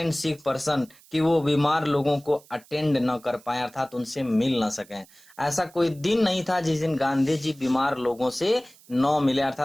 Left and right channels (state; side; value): noise; right; hiss, 26 dB below the sound